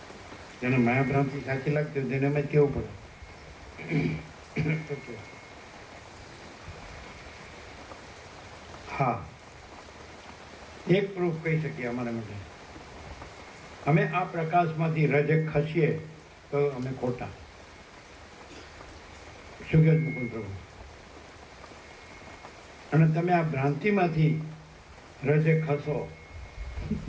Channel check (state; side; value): identical; both; correlation 1.00